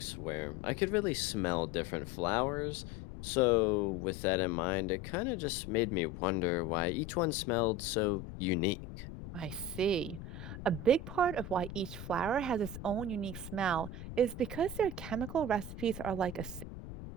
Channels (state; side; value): noise; left; rumble, 10 dB below the sound